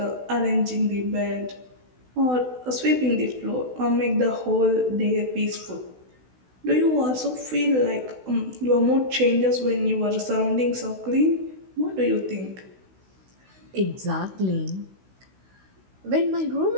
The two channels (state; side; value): late; left; 16 ms